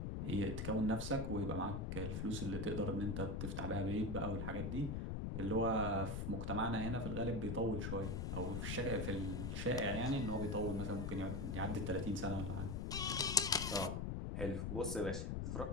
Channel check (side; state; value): left; noise; rumble, 2 dB below the sound